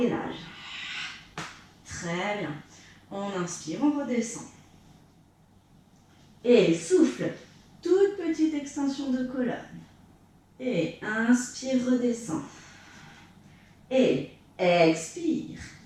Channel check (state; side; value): identical; both; correlation 1.00